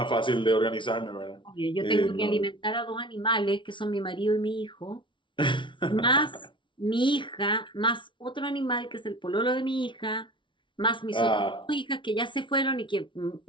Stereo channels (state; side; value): late; right; 0.24 ms